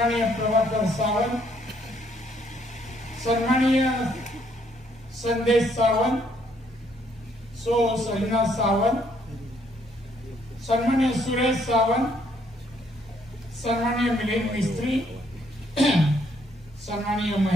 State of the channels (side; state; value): both; normal; correlation 0.69